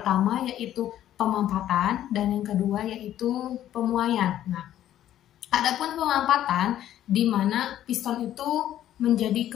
yaitu pemampatan, dan yang kedua yaitu pemuaian. Nah, adapun pemampatan di mana piston itu menjadi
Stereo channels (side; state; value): right; quieter; 12.0 dB